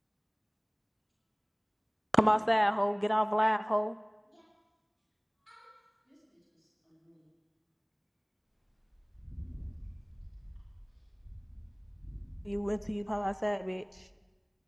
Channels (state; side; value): identical; both; correlation 1.00